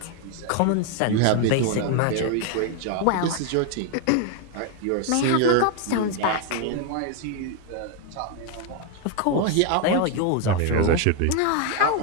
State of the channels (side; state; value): both; different; correlation 0.01